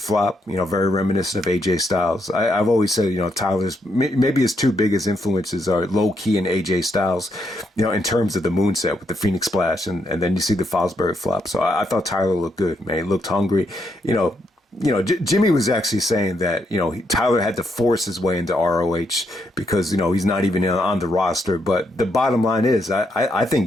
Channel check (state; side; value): normal; both; correlation 0.78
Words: very reminiscent of AJ Styles. I've always said, Tyler's maybe his two biggest influences are Low Key and AJ Styles, in terms of the moonset with the Phoenix Splash, and then you see the Fosbury flop. So I thought Tyler looked good, man. He looked hungry. Jimmy was actually saying that, Tyler had to force his way into ROH because, he's not even on the roster. But the bottom line is, I